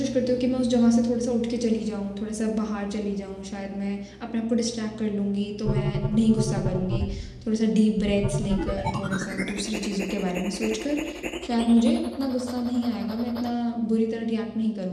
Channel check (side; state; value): both; identical; correlation 1.00